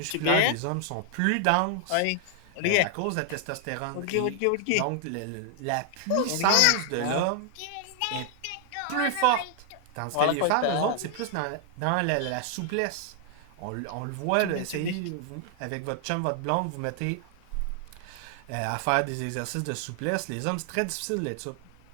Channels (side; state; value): both; different; correlation 0.00